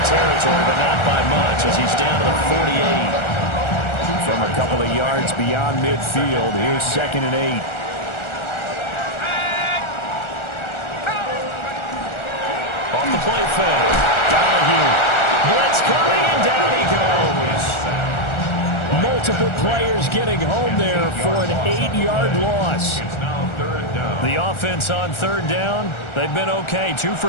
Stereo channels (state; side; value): late; right; 1.4 ms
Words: territory, but not by much as he's down to the 48. From a couple of yards beyond midfield, here's 2nd and 8. Off the play fake. Donahue. Blitz coming, and down he goes. Multiple players getting home there for an 8-yard loss. It's now 3rd down. The offense on 3rd down, they've been okay. 2